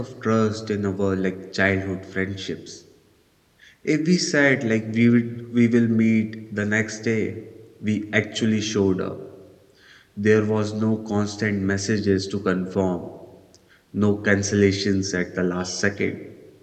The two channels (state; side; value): identical; both; correlation 1.00